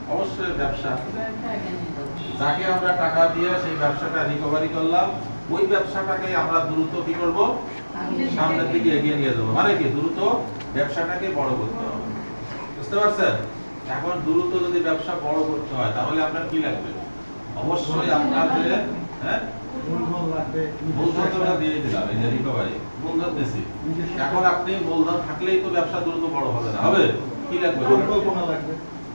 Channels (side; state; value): both; inverted; correlation -1.00